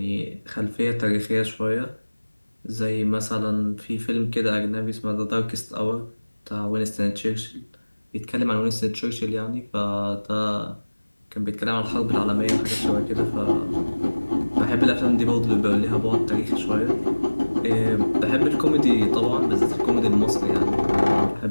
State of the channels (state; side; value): inverted; both; correlation -1.00